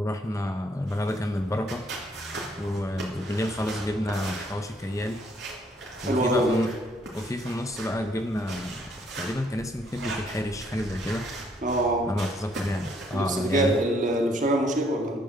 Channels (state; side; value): normal; both; correlation 0.68